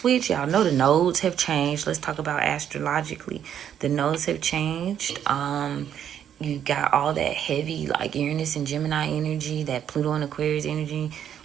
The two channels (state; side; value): quieter; left; 9.4 dB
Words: y'all know the nodes have changed. Let's talk about astrologically. The nodes have changed. You got all that heavy, like Uranus and Gemini energy, that Pluto and Aquarius energy.